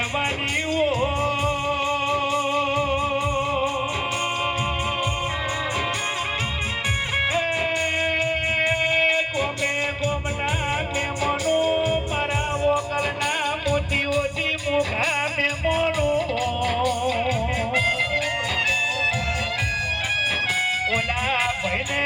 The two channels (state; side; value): identical; both; correlation 1.00